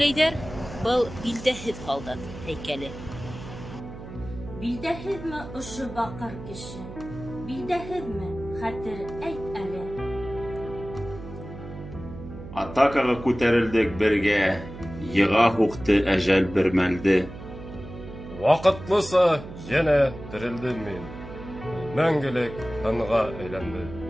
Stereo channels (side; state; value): right; noise; hum, 13 dB below the sound